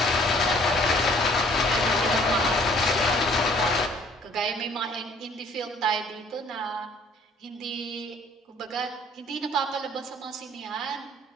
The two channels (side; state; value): both; normal; correlation 0.58